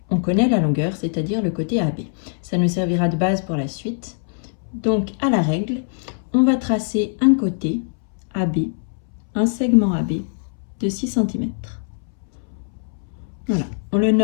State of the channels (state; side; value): silent; right; 64 dB below the other